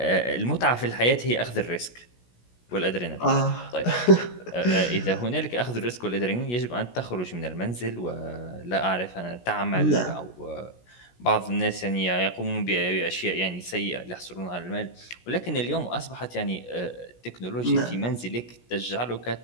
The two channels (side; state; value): right; late; 17 ms